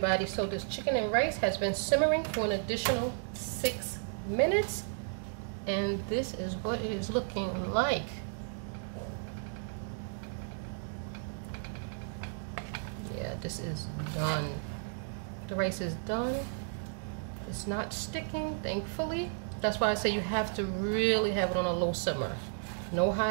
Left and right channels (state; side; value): silent; left; digital silence